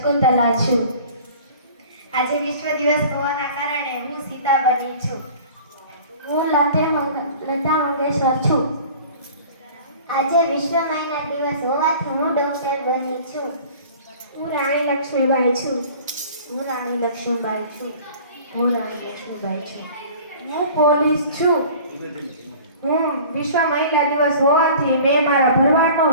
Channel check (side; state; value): both; inverted; correlation -0.45